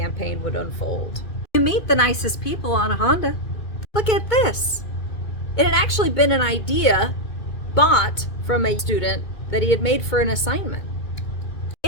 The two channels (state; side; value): late; right; 2.4 ms